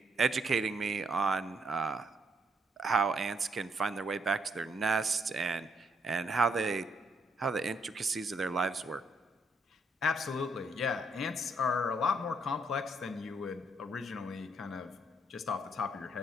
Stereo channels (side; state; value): both; normal; correlation 0.73